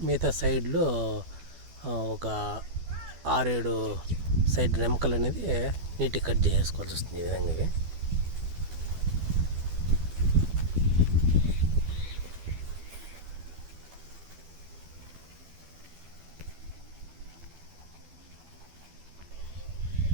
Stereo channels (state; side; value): late; left; 12 ms